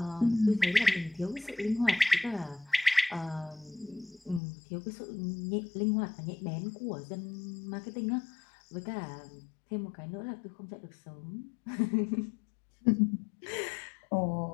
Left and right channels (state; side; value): drops out; right; at 4.4 s